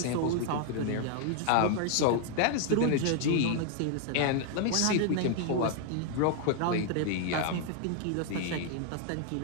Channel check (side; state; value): both; different; correlation 0.00